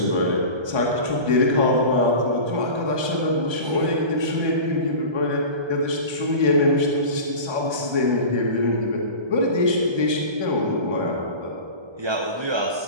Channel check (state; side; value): late; left; 1.2 ms